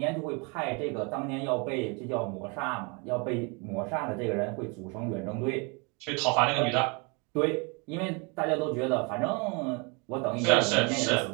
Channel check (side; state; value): left; quieter; 31.7 dB